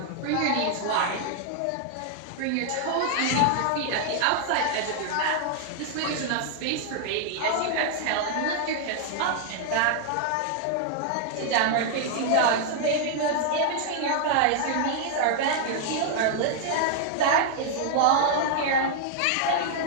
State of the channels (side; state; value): both; different; correlation 0.00